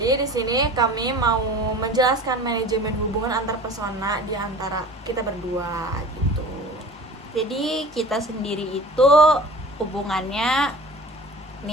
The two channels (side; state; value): both; normal; correlation 0.40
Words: di sini kami mau menjelaskan manajemen hubungan antar persona di antara kita berdua gitu. Jadi kita sendiri itu hubungannya